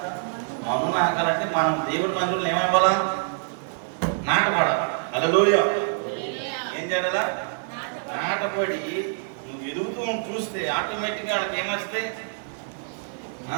మను నాకాలంటే మనం దేవుడి మందిరంలో ఏమైపోవాలా? నాటపడాలి. హల్లెలూయా. ఏం చేయాలా? నాటపడి నువ్వు ఎదుగుతూ చూస్తే ఆటోమేటిక్గా వాళ్ళకి ఏమొస్తాయి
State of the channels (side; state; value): left; silent; digital silence